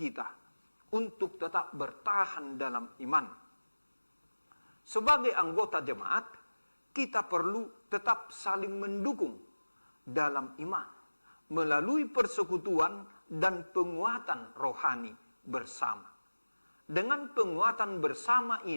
untuk tetap bertahan dalam iman. Sebagai anggota jemaat, kita perlu tetap saling mendukung dalam iman melalui persekutuan dan penguatan rohani bersama. Dengan penguatan bersama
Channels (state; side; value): inverted; both; correlation -1.00